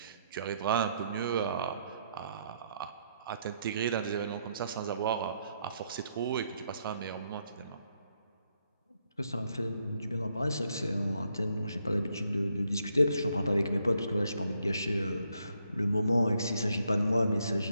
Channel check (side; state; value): both; inverted; correlation -0.75